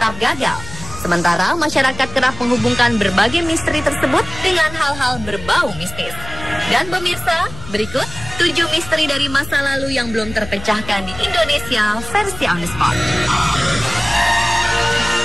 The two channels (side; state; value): left; noise; hum, 14 dB below the sound